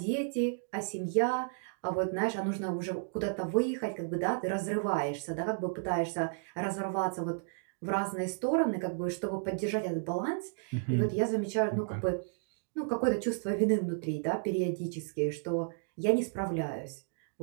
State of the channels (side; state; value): left; silent; digital silence